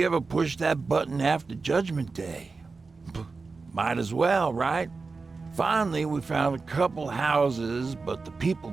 ever pushed that button after Judgment Day. Might as well, right? Finally, we found a couple houses, but the people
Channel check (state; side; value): quieter; left; 4.2 dB